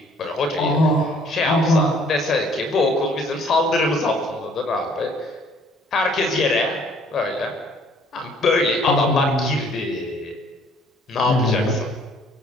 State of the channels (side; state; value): both; normal; correlation 0.59